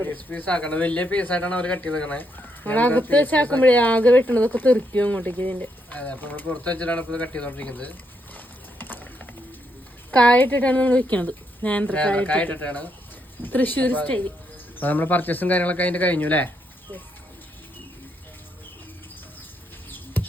പീസ് ആക്കണം. വലിയ പീസായിട്ടാണ് അവർ കട്ട് ചെയ്തേക്കണേ. അകത്ത് വെച്ചാക്കുമ്പോഴേ ആകെ വെട്ടണതൊക്കെ തെറിക്കും അങ്ങോട്ടേക്ക്. ഇതിന്റെ അതെ, അപ്പൊ നമ്മൾ പുറത്ത് വെച്ചിട്ടാണ് ഇപ്പൊ കട്ട് ചെയ്തോണ്ടിരിക്കുന്നത്. കായിട്ടിട്ടാണ് നമ്മൾ വെക്കണത്. കായ ഇട്ടിട്ടാണ്. തൃശ്ശൂർ സ്റ്റൈൽ. അപ്പൊ നമ്മള് പർച്ചേസും കാര്യങ്ങളൊക്കെ അതിന്റെ കഴിഞ്ഞു അല്ലേ?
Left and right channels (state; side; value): normal; both; correlation 0.78